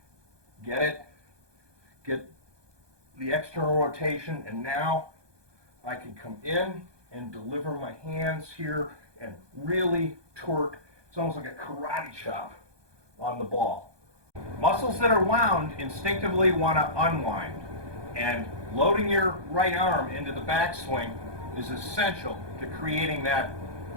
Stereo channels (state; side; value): late; left; 1.2 ms